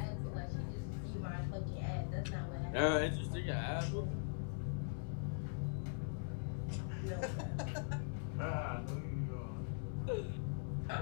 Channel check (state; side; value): silent; right; digital silence